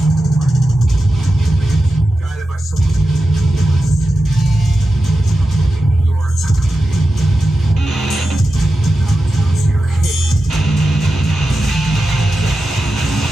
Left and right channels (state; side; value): normal; both; correlation 0.91